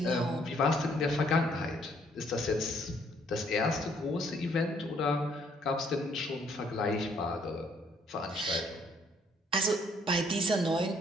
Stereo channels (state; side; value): normal; both; correlation 0.66